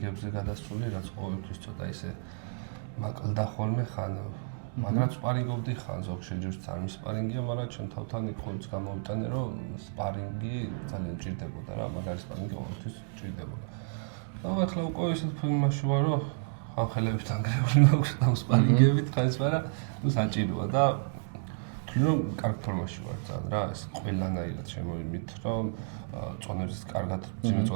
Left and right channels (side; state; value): left; silent; digital silence